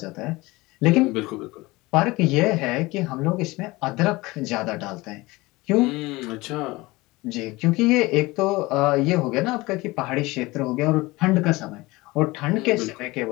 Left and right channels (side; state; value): right; quieter; 21.4 dB